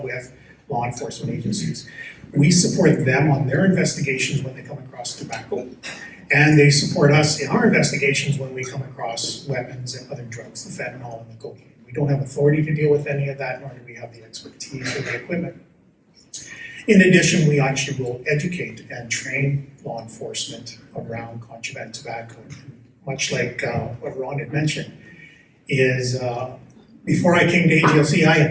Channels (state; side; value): identical; both; correlation 1.00